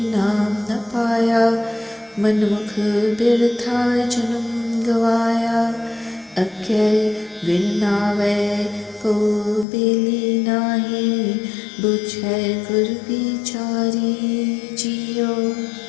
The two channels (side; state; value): right; drops out; at 9.7 s